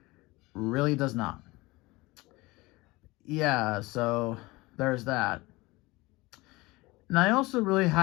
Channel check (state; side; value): quieter; right; 21.8 dB